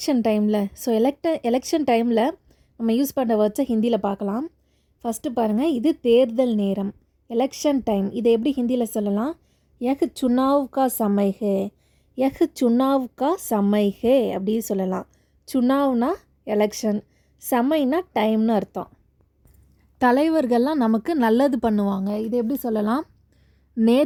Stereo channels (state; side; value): identical; both; correlation 1.00